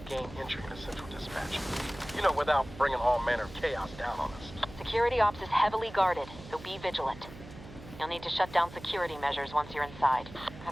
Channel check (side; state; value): right; noise; hum, 16 dB below the sound